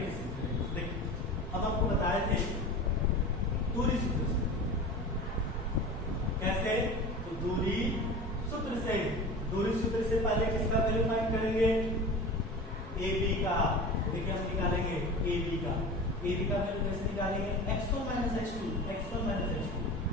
से देखिए, अब आपको बताए थे दूरी सूत्र से, कैसे तो दूरी सूत्र से पहले किसका वैल्यू फाइंड करेंगे, AB का। देखिए हम निकालेंगे AB का वैल्यू कैसे निकालेंगे, x1 - x2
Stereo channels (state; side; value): normal; both; correlation 0.34